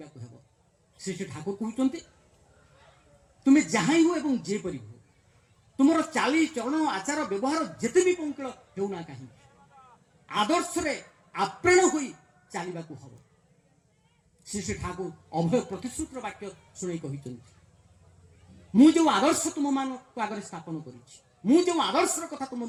ହେବ। ଶ୍ରୀ ଶ୍ରୀ ଠାକୁର କହୁଛନ୍ତି ତୁମେ ଯାହା ହୁଅ ଏବଂ ଯେପରି ହୁଅ, ତୁମର ଚାଲି ଚରଣ ଆଚାର ବ୍ୟବହାର ଯେତେ ବି ପଙ୍କିଳ ହେଉନା କାହିଁକି, ଆଦର୍ଶରେ ଆପ୍ରାଣ ହୋଇ ଚାଲିବାକୁ ହେବ। ଶ୍ରୀ ଶ୍ରୀ ଠାକୁର ଅଭୟ ପ୍ରତିଶ୍ରୁତିର ବାକ୍ୟ ଶୁଣାଇ କହିଛନ୍ତି, ମୁଁ ଯେଉଁ ଆଦର୍ଶ ତୁମମାନଙ୍କ ଆଗରେ ସ୍ଥାପନ କରିଛି, ମୁଁ ଯେଉଁ ଆଦର୍ଶର କଥା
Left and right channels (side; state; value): both; identical; correlation 1.00